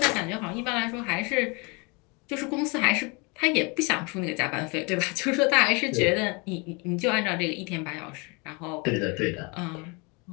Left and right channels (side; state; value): right; quieter; 30.0 dB